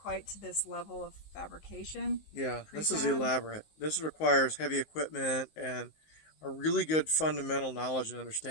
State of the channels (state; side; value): late; right; 19 ms